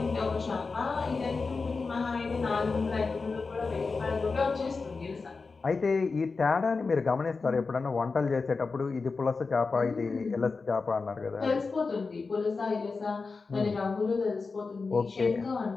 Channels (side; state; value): right; quieter; 4.3 dB